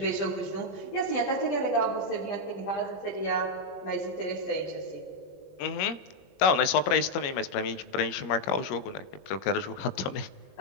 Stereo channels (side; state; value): right; late; 21 ms